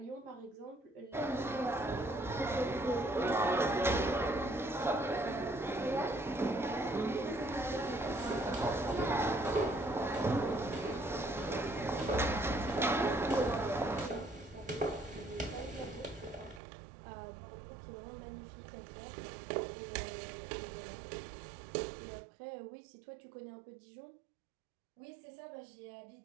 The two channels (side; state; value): left; drops out; at 16.6 s